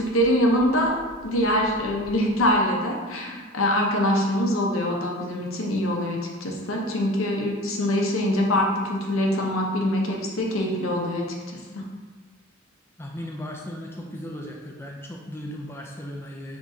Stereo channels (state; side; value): normal; both; correlation 0.37